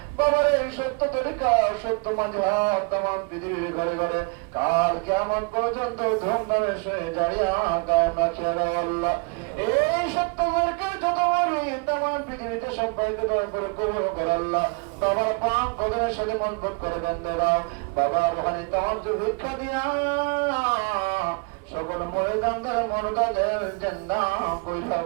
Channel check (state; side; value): quieter; left; 33.7 dB